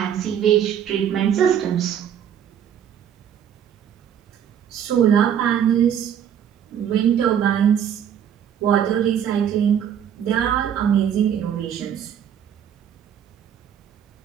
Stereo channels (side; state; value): left; quieter; 9.1 dB